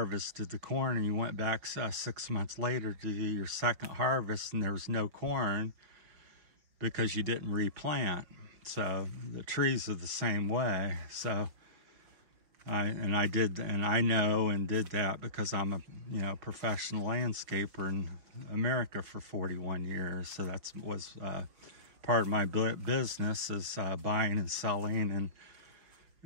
the corn and you went back 6 months later to do your second harvest and there was no corn because you didn't replant. So the trees are the same way. So I know and did that because I'm a, you know, professional landscaper in America for 41 years. So that was part of my business, is buying and selling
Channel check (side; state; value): left; late; 5.2 ms